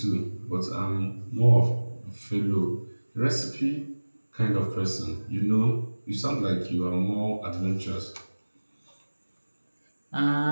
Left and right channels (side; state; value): both; inverted; correlation -1.00